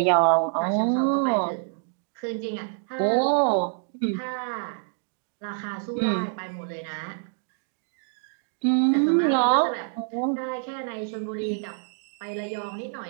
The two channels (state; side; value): silent; left; digital silence